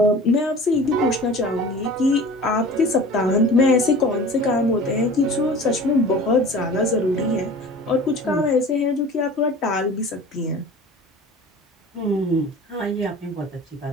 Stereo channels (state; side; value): normal; both; correlation 0.40